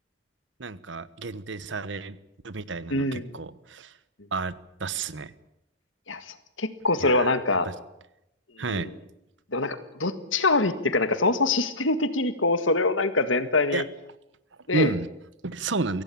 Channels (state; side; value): normal; both; correlation -0.17